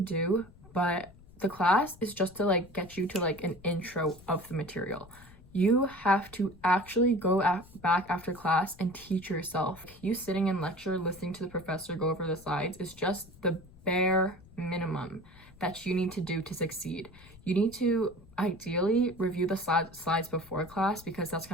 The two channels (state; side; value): noise; left; rumble, 22 dB below the sound